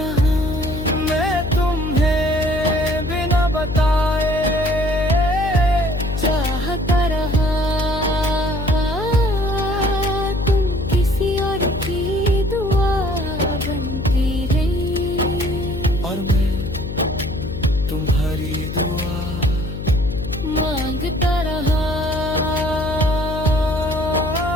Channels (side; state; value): left; noise; hum, 6 dB below the sound